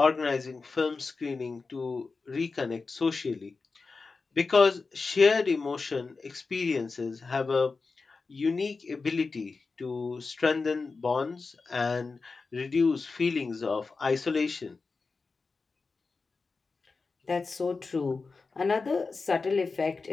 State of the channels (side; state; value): right; quieter; 4.3 dB